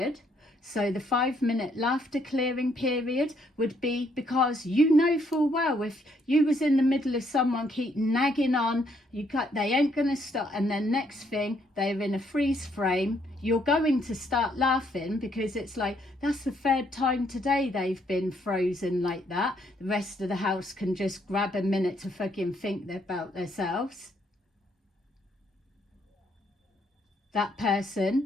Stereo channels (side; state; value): both; normal; correlation 0.71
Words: So the 5-minute laughter clearing period would be, because you know full well if you was in the middle of someone keep nagging on, they ain't going to stop, and then next thing they're in a freeze frame, you're going to start laughing, because it's like, that's the third time today they've been frozen like that. The rest of the house can just grab a minute to fucking think about themselves. That